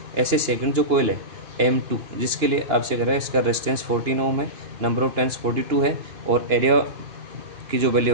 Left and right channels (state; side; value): late; left; 2.9 ms